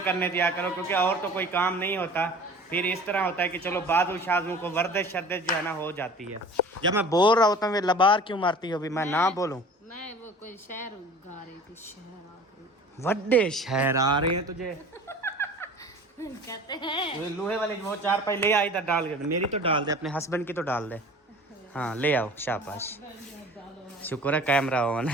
दिया करो, क्योंकि और तो कोई काम नहीं होता। फिर इस तरह होता है कि चलो बाजू शाजू को वर्दिश शर्दिश जो है ना हो जाती है। जब मैं बोल रहा होता हूँ वे लबार क्यों मारती हो? भी मैं ना बोलूं? मैं वो कोई शहर गा रही थी, शहर आ गई। वड्डे शहर आ रहे हैं तुझे कहते हैं। वो लोहे वाले वो 4 पाई ले आई, इधर डाल के। मेरी तो डाल दे, अपने हस्बैंड की तो डाल दे। हाँ ले आओ, शाबाश। शुक्र है कैमरा ऑन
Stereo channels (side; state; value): both; normal; correlation 0.42